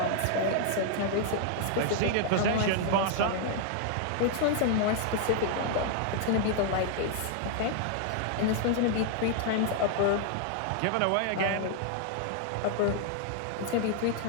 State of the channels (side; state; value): both; different; correlation 0.00